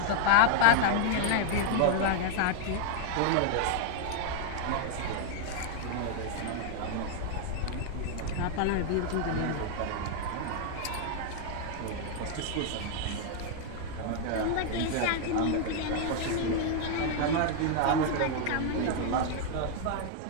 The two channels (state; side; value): different; both; correlation 0.00